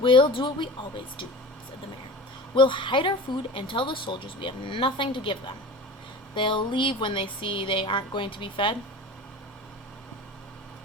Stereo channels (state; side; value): normal; both; correlation 0.35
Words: do what we always do, said the mayor. We'll hide our food and tell the soldiers we have nothing to give them. They'll leave when they see they aren't going to be fed.